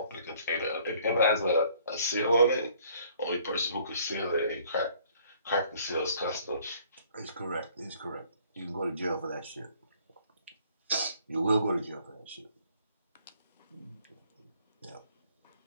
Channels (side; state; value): both; inverted; correlation -0.59